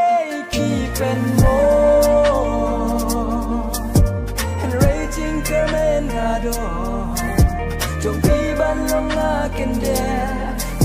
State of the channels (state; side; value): identical; both; correlation 1.00